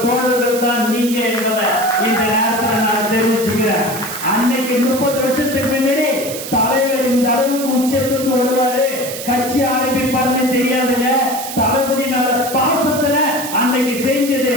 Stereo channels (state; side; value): noise; right; hiss, 9 dB below the sound